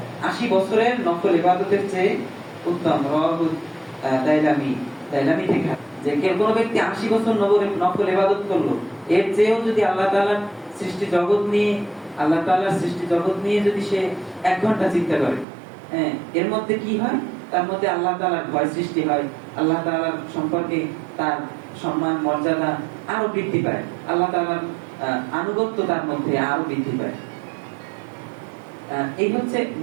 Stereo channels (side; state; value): left; drops out; at 15.5 s